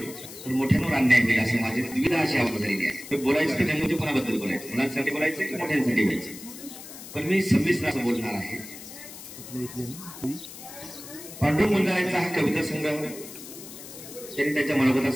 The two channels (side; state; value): left; noise; hiss, 14 dB below the sound